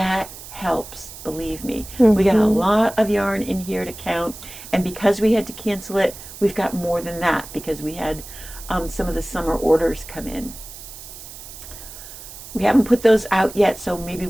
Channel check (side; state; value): right; noise; hiss, 14 dB below the sound